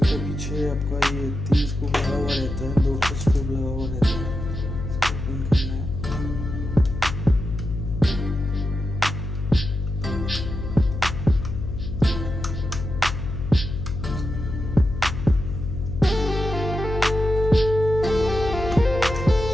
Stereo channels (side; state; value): left; noise; hum, 5 dB below the sound